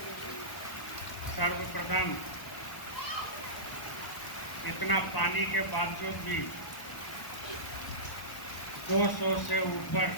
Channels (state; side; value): late; right; 1.1 ms